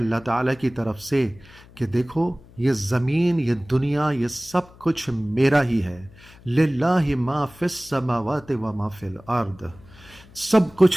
تعالیٰ کی طرف سے کہ دیکھو یہ زمین، یہ دنیا، یہ سب کچھ میرا ہی ہے۔ للہ ما فی السماوات و ما فی الارض، سب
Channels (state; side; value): noise; left; hum, 23 dB below the sound